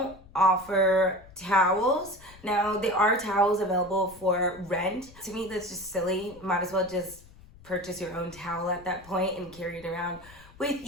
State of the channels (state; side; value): noise; left; rumble, 22 dB below the sound